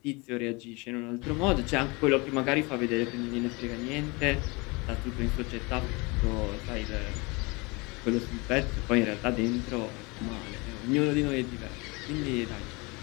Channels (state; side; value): quieter; right; 26.8 dB